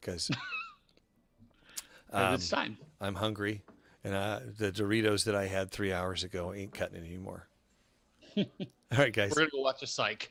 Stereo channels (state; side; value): identical; both; correlation 1.00